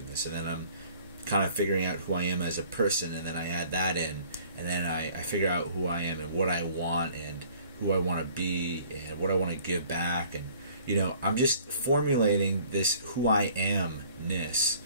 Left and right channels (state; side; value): inverted; both; correlation -0.55